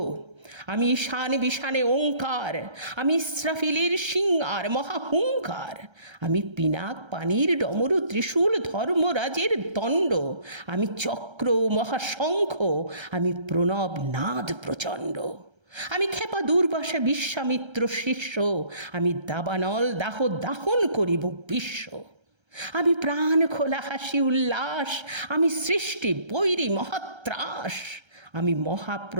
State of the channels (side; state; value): left; late; 1.3 ms